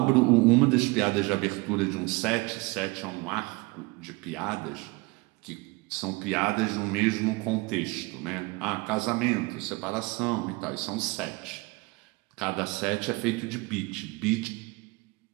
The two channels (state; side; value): quieter; left; 25.2 dB